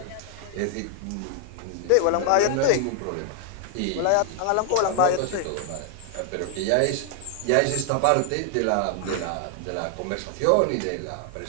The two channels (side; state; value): both; different; correlation 0.00